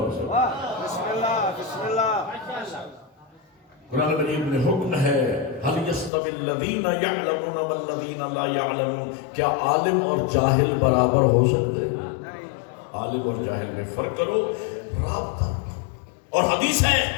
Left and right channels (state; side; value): drops out; right; at 6.1 s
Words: سکتا۔ بسم اللہ بسم اللہ۔ قرآن مجید میں حکم ہے هل يستوي الذين يعلمون والذين لا يعلمون، کیا عالم اور جاہل برابر ہو سکتے ہیں؟ عالم اور جاہل میں فرق کرو، رابطہ۔ اور حدیث ہے،